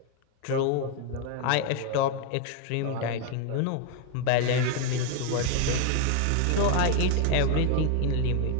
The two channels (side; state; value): both; different; correlation 0.01